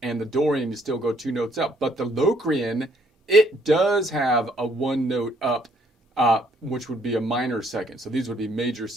and the Dorian you still go 2 notes up. But the Locrian, it does have a 1 note up, which would be a minor second. So these would be major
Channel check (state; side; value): normal; both; correlation 0.66